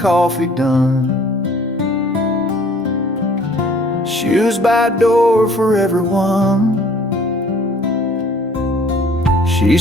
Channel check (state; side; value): normal; both; correlation 0.55